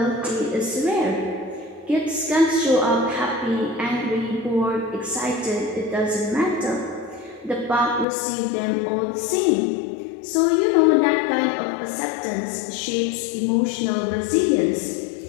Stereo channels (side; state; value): right; drops out; at 8.1 s